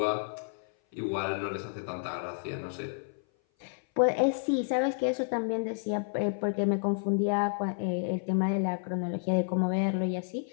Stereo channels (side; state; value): right; silent; 56 dB below the other